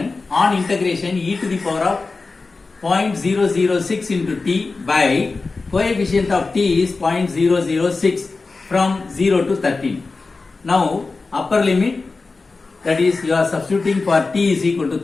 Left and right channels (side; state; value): right; quieter; 3.9 dB